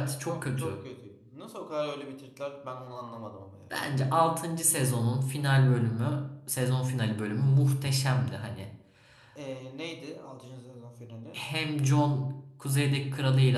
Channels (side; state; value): both; identical; correlation 1.00